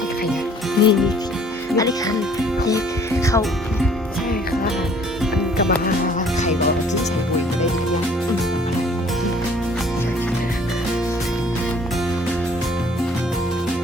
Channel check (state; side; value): normal; both; correlation 0.57